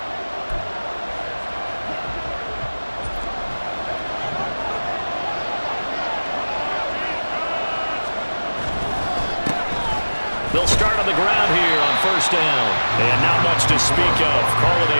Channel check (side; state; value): both; inverted; correlation -1.00